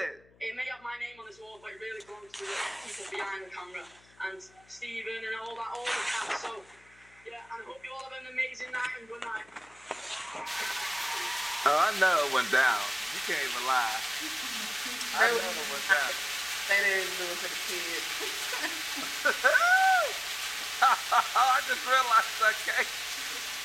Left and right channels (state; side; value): noise; left; hum, 29 dB below the sound